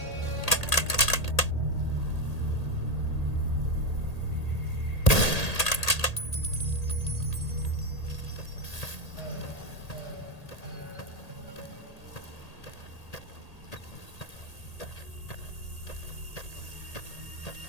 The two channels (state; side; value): late; right; 1.8 ms